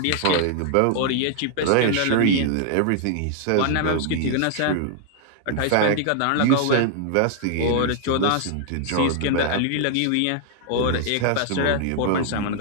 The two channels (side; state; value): both; different; correlation 0.00